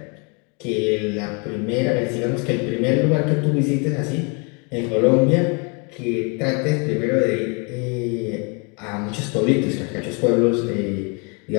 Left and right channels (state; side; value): quieter; right; 33.4 dB